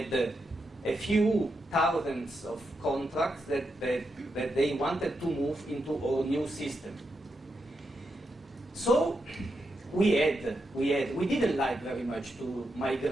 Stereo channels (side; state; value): both; normal; correlation 0.85